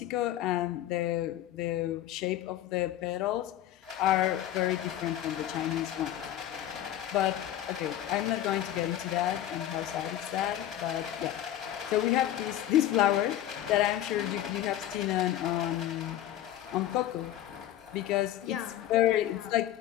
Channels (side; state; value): right; quieter; 12.4 dB